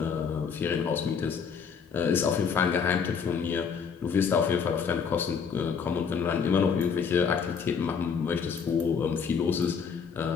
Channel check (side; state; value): right; quieter; 6.4 dB